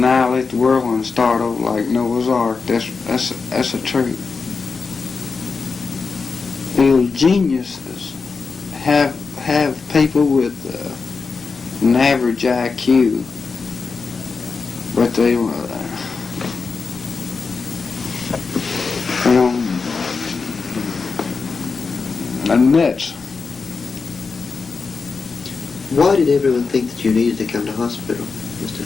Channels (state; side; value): quieter; right; 4.8 dB